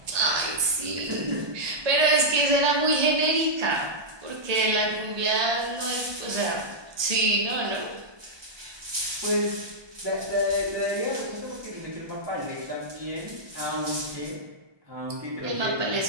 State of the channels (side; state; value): left; late; 1.2 ms